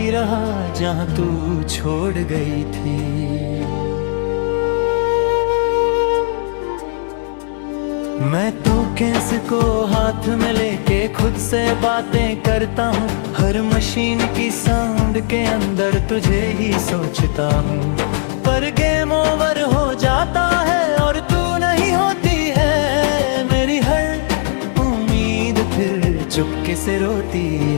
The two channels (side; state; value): right; silent; digital silence